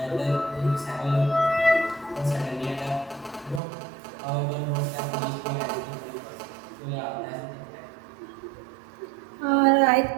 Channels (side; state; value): left; drops out; at 3.6 s